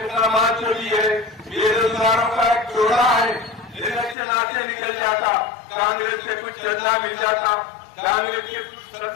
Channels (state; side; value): drops out; right; at 4.2 s